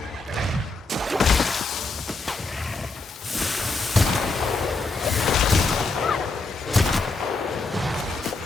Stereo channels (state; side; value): quieter; right; 3.5 dB